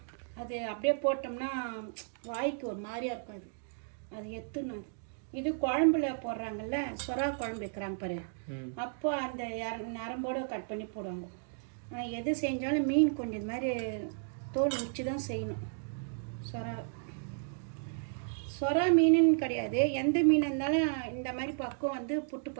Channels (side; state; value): left; silent; digital silence